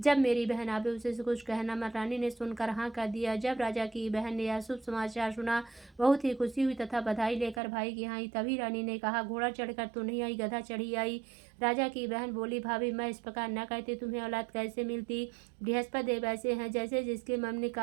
मेरी बहन आवे उसे कुछ कहना मत। रानी ने सुनकर हाँ कर दिया। जब राजा की बहन ने यह शुभ समाचार सुना, बहुत ही खुशी हुई तथा बधाई लेकर भाई की यहाँ आई। तभी रानी ने कहा, घोड़ा चढ़कर तो नहीं आई, गधा चढ़ी आई। राजा की बहन बोली, भाभी, मैं इस प्रकार न कहती, तुम्हें औलाद कैसे मिलती। बृहस्पति देव ऐसे हैं, जैसे जिसके मन में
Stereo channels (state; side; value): drops out; left; at 7.6 s